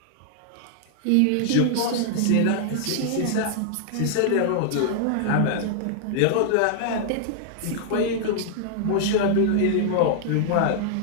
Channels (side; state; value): both; different; correlation -0.01